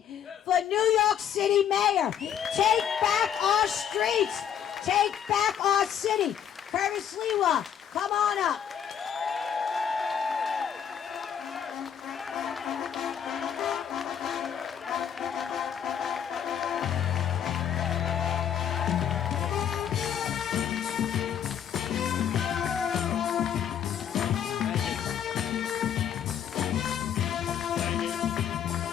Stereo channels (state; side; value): quieter; right; 8.9 dB